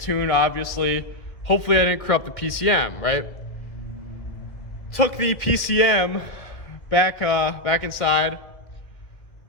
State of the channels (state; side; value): late; right; 1.8 ms